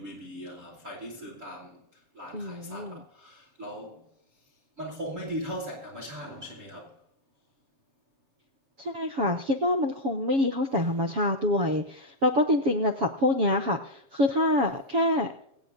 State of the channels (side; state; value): left; late; 7.2 ms